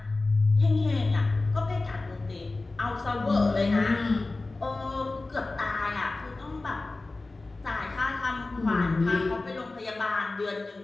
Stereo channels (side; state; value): right; quieter; 3.3 dB